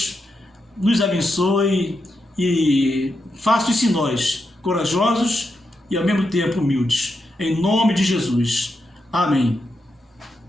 nos abençoe e faça isso em nós, corajosos e ao mesmo tempo humildes. Em nome de Jesus. Amém.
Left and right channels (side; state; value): both; normal; correlation 0.85